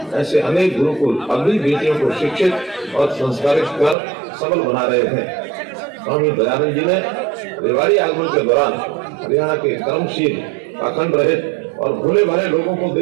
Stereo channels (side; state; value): left; drops out; at 4.0 s